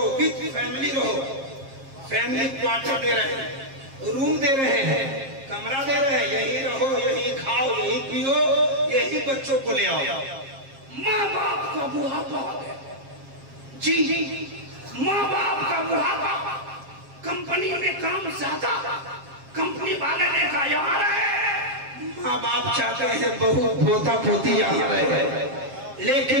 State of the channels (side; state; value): left; late; 7.5 ms